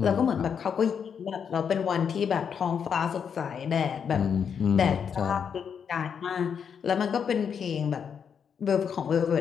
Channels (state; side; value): quieter; right; 7.2 dB